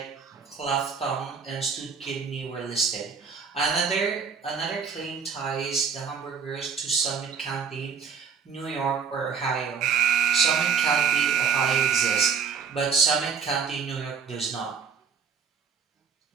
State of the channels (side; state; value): left; quieter; 6.4 dB